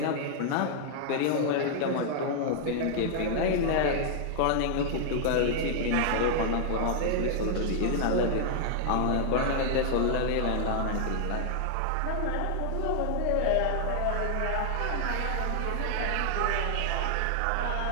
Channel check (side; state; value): both; different; correlation -0.01